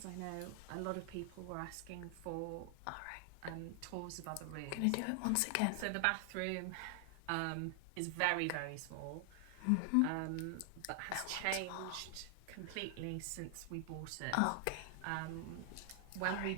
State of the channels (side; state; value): both; different; correlation 0.00